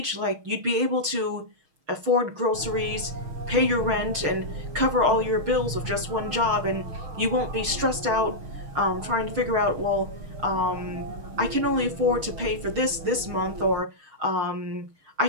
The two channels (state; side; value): late; left; 6.4 ms